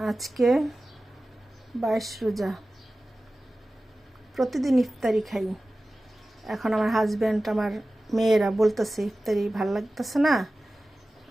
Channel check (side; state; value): both; normal; correlation 0.96